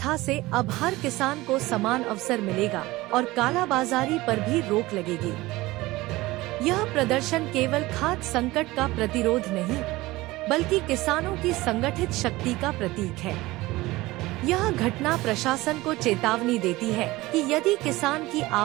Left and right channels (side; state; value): left; quieter; 19.5 dB